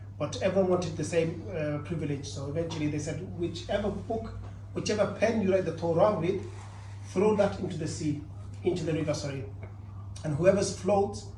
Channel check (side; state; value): both; identical; correlation 1.00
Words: But everyone wanted the same privilege, so eventually they said, whichever pen you write the Torah with, throw that into the sea, into the river, and whoever's floats,